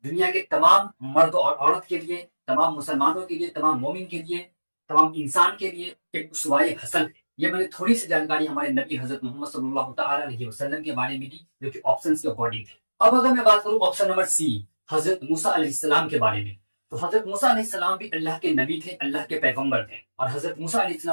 दुनिया के तमाम मर्द और औरत के लिए, तमाम मुसलमानों के लिए, तमाम मोमिन के लिए, तमाम इंसान के लिए एक उसवाए हसन है। ये मैंने थोड़ी सी जानकारी हमारे नबी हजरत मोहम्मद सल्लल्लाहु तआला अलैहि वसल्लम के बारे में दी, जो कि ऑप्शंस के अकॉर्डिंग थे। अब अगर मैं बात करूं ऑप्शन नंबर सी हजरत मूसा अलैहिस्सलाम के बारे में, तो हजरत मूसा अलैहिस्सलाम भी अल्लाह के नबी थे, अल्लाह के पैगंबर थे, और हजरत मूसा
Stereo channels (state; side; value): inverted; both; correlation -1.00